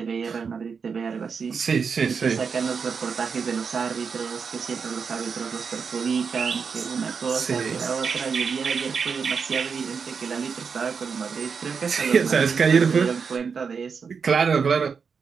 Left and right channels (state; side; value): quieter; left; 5.8 dB